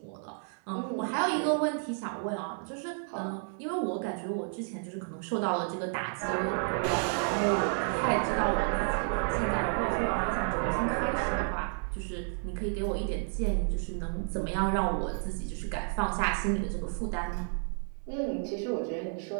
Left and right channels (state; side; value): silent; left; 57 dB below the other